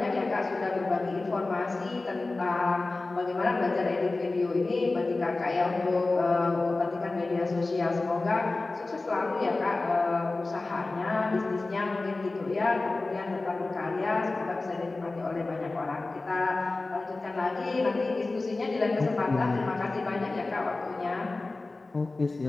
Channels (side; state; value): right; quieter; 3.3 dB